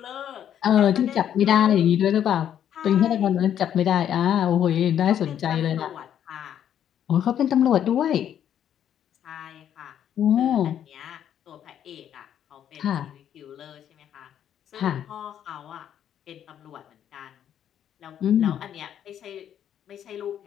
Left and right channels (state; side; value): quieter; right; 9.8 dB